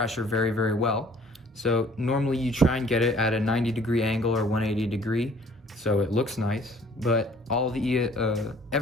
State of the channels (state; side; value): normal; both; correlation 0.55